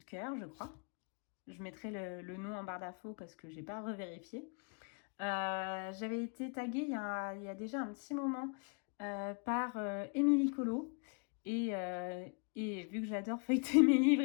de cœur, je crois. Je mettrai le nom en barre d'infos parce que j'ai pas revérifié. J'avais été taguée il y a déjà un petit moment par Émilie Colo et vu que j'adore feuilleter mes livres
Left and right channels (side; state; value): right; quieter; 37.5 dB